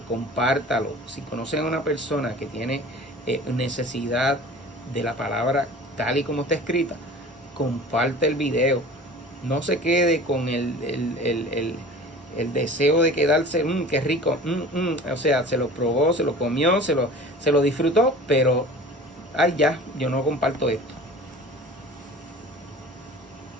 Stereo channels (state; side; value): normal; both; correlation 0.42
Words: compártalo. Si conocen a una persona que tiene necesidad de la palabra tal y como está escrita, comparte el video. No se quede con el deseo de quedarse, qué rico, o sea, se lo probó, se lo comió, se lo disfrutó, pero, ay ya, yo no comparto esto.